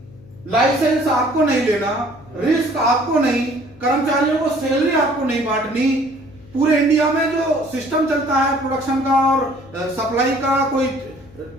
लाइसेंस आपको नहीं लेना, रिस्क आपको नहीं, कर्मचारियों को सैलरी आपको नहीं बांटनी, पूरे इंडिया में जो सिस्टम चलता है प्रोडक्शन का और सप्लाई का, कोई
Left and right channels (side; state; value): left; noise; hum, 23 dB below the sound